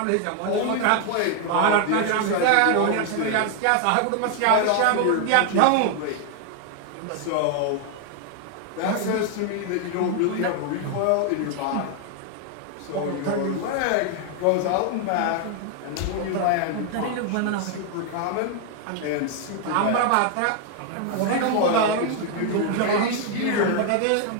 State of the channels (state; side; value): different; both; correlation 0.00